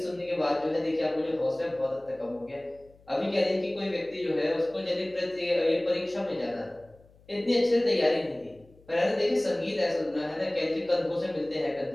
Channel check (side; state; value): left; noise; hum, 28 dB below the sound